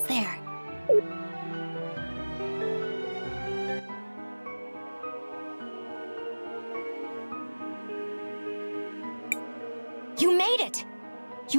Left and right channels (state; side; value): inverted; both; correlation -1.00